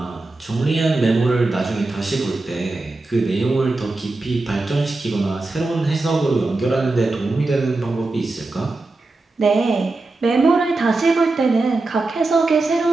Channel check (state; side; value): quieter; left; 3.3 dB